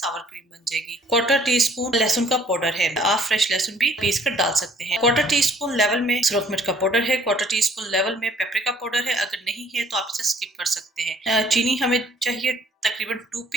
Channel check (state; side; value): normal; both; correlation 0.59